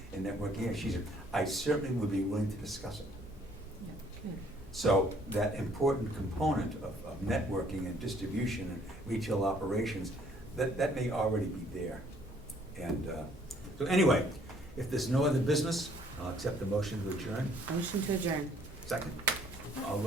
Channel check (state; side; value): normal; both; correlation 0.61